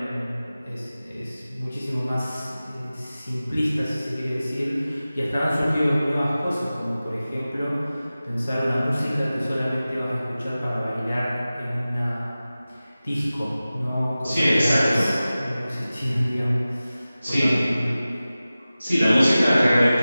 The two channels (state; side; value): inverted; both; correlation -0.96